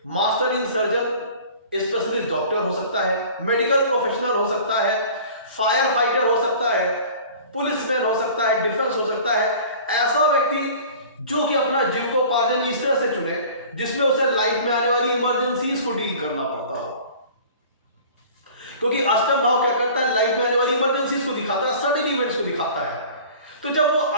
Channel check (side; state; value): both; inverted; correlation -0.44